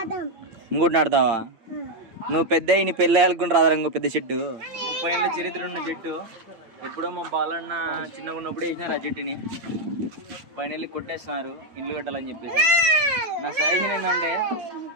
ఇంకోటి నాడతావా నువ్వు పెద్ద నీ పెళ్ళి ఆడుకుని రాదా ఇంకో పెద్ద చెట్టు 30 ఏళ్ళ చరిత్ర ఉన్న చెట్టు. ఎప్పుడో మా బాలన్న చిన్నగా ఉన్నప్పుడు వేసినారు ఆ చెట్టుని, పైన వెళ్ళి కొట్టేస్తున్నారు ఇల్లు కట్టాలని చెప్పేసి. నా సజెషన్ ఏంటంటే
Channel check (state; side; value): late; left; 8.9 ms